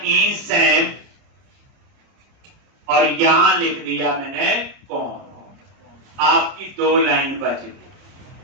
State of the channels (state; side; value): late; left; 29 ms